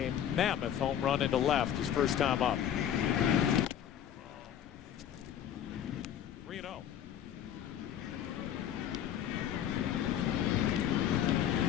mammoth home run into left his first time up. 3-0.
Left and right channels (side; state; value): right; quieter; 10.0 dB